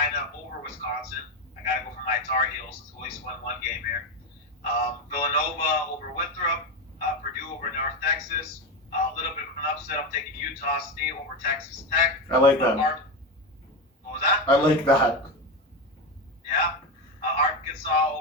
over Wisconsin. I got to go for my Tar Heels since we at least won one game here. Villanova over Winthrop. Purdue over North Texas. A little bit of an upset. I'm taking Utah State over Texas Tech. I like that. What was that? I like that. Yeah. Arkansas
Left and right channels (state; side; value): normal; both; correlation 0.15